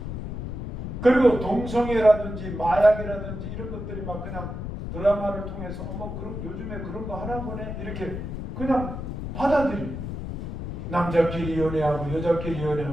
그리고 동성애라든지 마약이라든지 이런 것들이 막 그냥 드라마를 통해서 그럼 요즘에 그런 거 하나 보네 이렇게 그냥 받아들여요. 남자끼리 연애하고 여자끼리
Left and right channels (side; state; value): left; noise; rumble, 6 dB below the sound